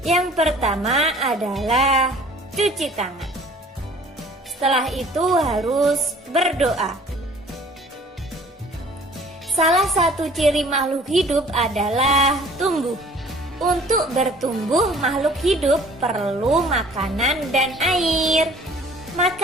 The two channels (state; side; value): normal; both; correlation 0.51